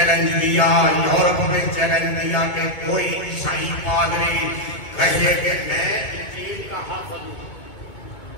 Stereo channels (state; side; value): late; right; 2.2 ms